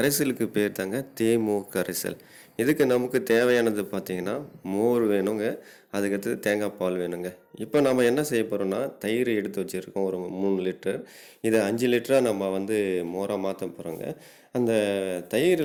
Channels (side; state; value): both; identical; correlation 1.00